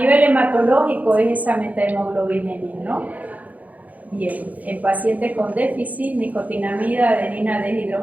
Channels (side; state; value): left; late; 0.077 ms